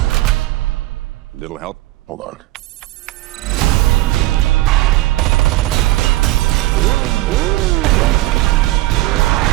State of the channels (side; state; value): left; quieter; 18.3 dB